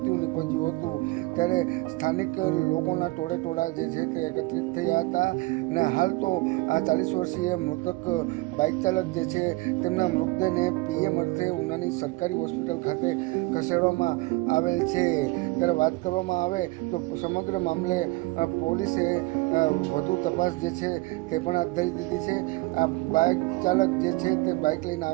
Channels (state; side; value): quieter; left; 22.5 dB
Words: નીપજ્યું હતું. ત્યારે સ્થાનિક લોકોના ટોળે જે છે તે એકત્રિત થયા હતા અને હાલ તો આ 40 વર્ષીય મૃતક બાઇક ચાલક જે છે તેમના મૃતદેહને પીએમ અર્થે ઉનાની સરકારી હોસ્પિટલ ખાતે ખસેડવામાં આવેલ છે. ત્યારે વાત કરવામાં આવે તો સમગ્ર મામલે પોલીસે વધુ તપાસ જે છે તે પણ હાથ ધરી દીધી છે. આ બાઇક ચાલક જે છે તે બાઇક લઈને